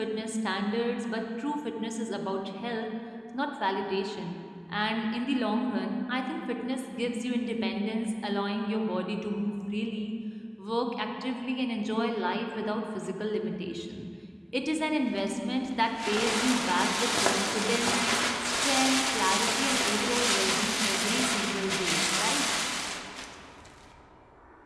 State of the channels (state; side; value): identical; both; correlation 1.00